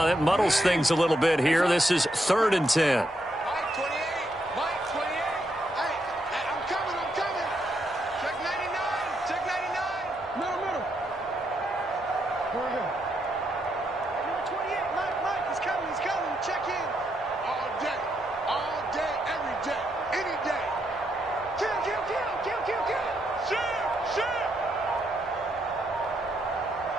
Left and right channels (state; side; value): normal; both; correlation 0.79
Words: That muddles things a little bit here. This is 3rd and 10.